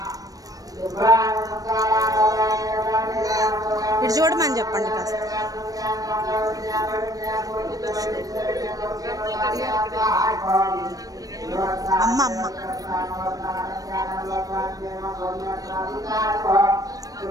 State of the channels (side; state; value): left; late; 0.18 ms